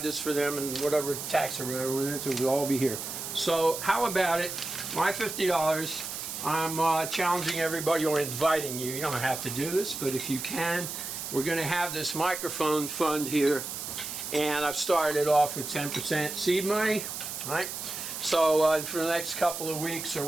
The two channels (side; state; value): right; noise; hiss, 6 dB below the sound